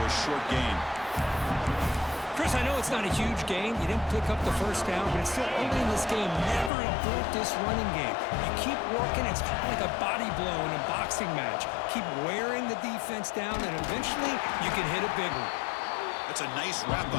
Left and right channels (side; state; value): right; drops out; at 6.7 s